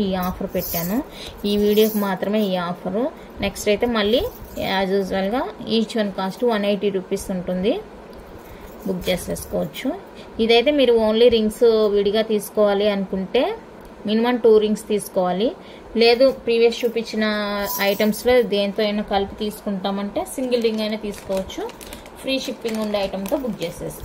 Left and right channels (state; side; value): identical; both; correlation 1.00